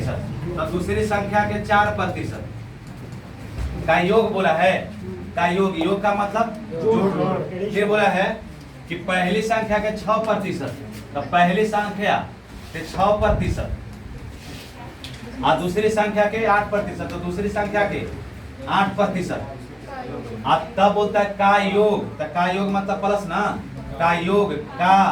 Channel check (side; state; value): both; identical; correlation 1.00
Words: तो दूसरी संख्या के 4% का योग बोला है, का योग का मतलब जोड़। ये बोला है कि पहली संख्या के 6%, तो पहली संख्या के 6% और दूसरी संख्या के 8%, तो दूसरी संख्या के 8%। अब तब होता है का योग, तो का योग मतलब प्लस ना, का योग का